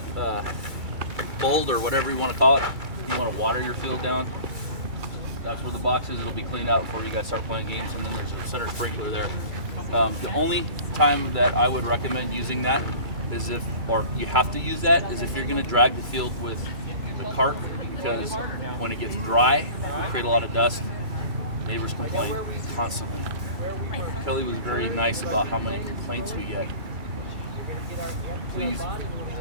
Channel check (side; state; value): left; late; 2.3 ms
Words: bold or whatever you want to call it, if you want to water your field down, that's where the box is. It'll be cleaned out before you guys start playing games, and then there's a center sprinkler there. The only time that I would recommend using that is if you have to use that, is if you're going to drag the field with the cart, because when it gets dry, it create a lot of dust. Neighbors complain constantly. Kelly was very nice about how many complaints we get. Please,